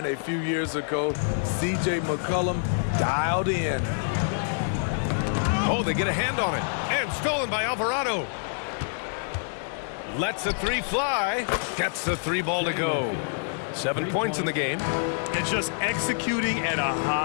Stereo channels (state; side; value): silent; right; digital silence